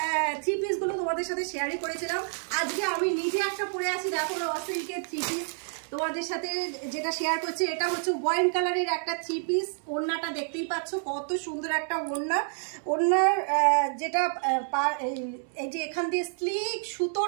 থ্রি পিস গুলো তোমাদের সাথে শেয়ারই করেছিলাম। আজকে আমি নিজে একটা পরে আছি, দেখো র সিল্কের থ্রি পিস তোমাদের সাথে যেটা শেয়ার করছি। এটা হচ্ছে ওয়াইন কালারের একটা থ্রি পিস। ওড়নাটা দেখতেই পাচ্ছ কত সুন্দর একটা ওড়না। ওড়নার যেটা এই যে এখান দিয়ে স্লিক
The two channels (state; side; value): silent; left; digital silence